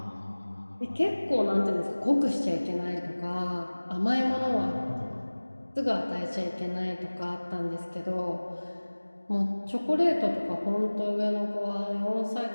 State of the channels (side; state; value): both; inverted; correlation -1.00